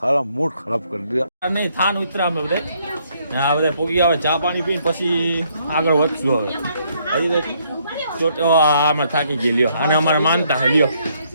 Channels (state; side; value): inverted; both; correlation -0.70